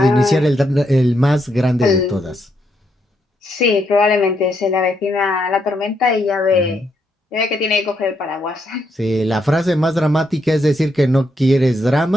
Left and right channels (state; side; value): normal; both; correlation 0.78